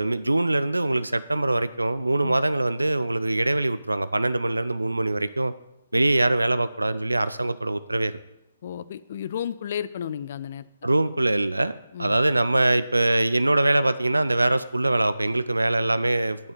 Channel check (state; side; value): inverted; both; correlation -0.96